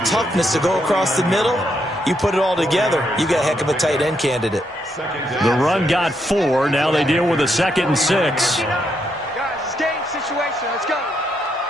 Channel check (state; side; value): normal; both; correlation 0.78